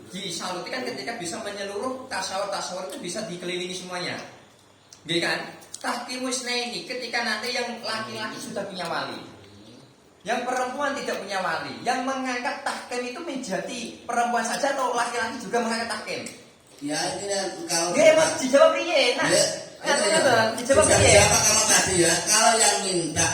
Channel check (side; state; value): both; identical; correlation 1.00